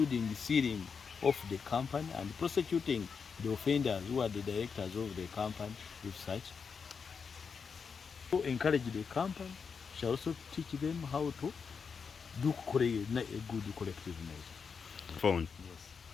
sealing of the company and prosecuting the offenders who are the directors of the company with such. To encourage the company, shall also teach them how to do a good collective measure. Phone. Yes.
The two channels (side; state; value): right; quieter; 5.8 dB